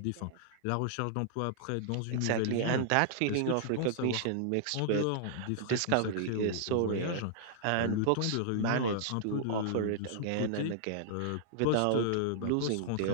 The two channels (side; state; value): both; different; correlation -0.01